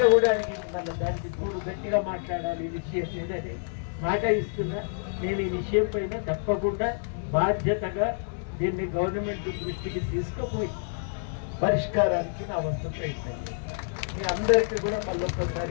కూడా అడిగింది. మళ్ళీ దానికి తోడు గట్టిగా మాట్లాడాలి ఈ విషయం లేదని మాట ఇస్తున్నా. నేను ఈ విషయం పైన తప్పకుండా బాధ్యతగా దీన్ని గవర్నమెంట్ దృష్టికి తీసుకుపోయి పరిష్కారానికి నా వంతు ప్రయత్నం. మీ అందరికీ కూడా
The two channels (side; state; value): right; silent; digital silence